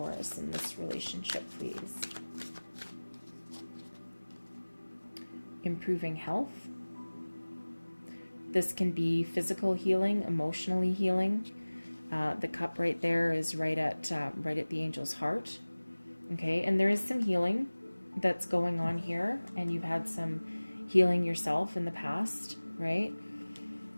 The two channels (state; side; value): inverted; both; correlation -1.00